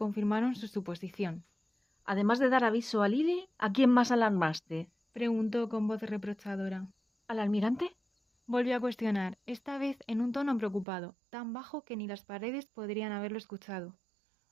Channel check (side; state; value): left; drops out; at 10.9 s